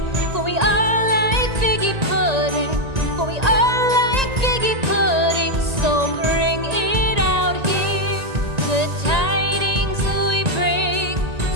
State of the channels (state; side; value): late; left; 1.9 ms